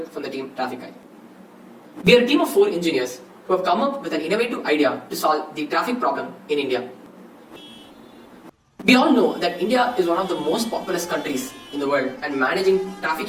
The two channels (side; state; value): both; identical; correlation 1.00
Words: from the team Traffic Eye. We are a team of 4 engineers who have come up with an innovative idea to solve the traffic problem in India. We all know that India is one of the most populous countries in the world and managing traffic